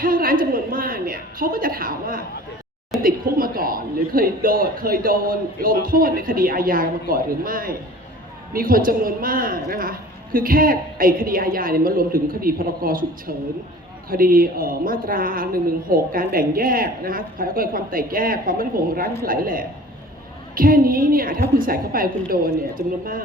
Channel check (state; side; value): normal; both; correlation 0.44